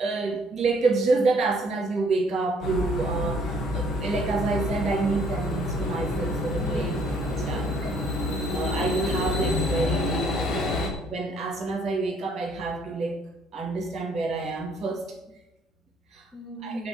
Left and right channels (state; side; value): normal; both; correlation 0.62